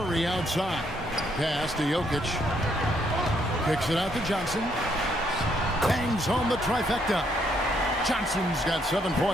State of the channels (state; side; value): normal; both; correlation 0.72